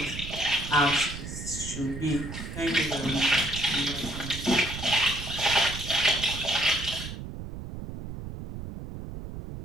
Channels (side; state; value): right; noise; rumble, 9 dB below the sound